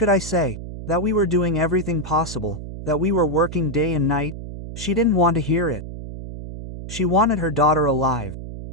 I say? That we were doing everything possible, that we were working day and night? She didn't want to hear it. She wanted her daughter alive.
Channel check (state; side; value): noise; right; hum, 10 dB below the sound